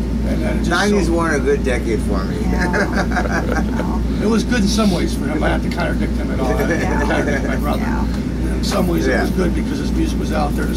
And then it just 90s weren't a good decade for me. Yeah. It was good in some ways for him. I have to contradict him at all. I contradict my brother. Yeah. In some ways, it was good because his music was out there. The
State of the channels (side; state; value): both; identical; correlation 1.00